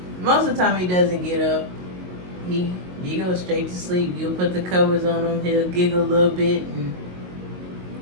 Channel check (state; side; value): late; left; 22 ms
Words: most of the time he doesn't get up. He goes straight to sleep. You'll put the covers on him, he'll giggle a little bit, and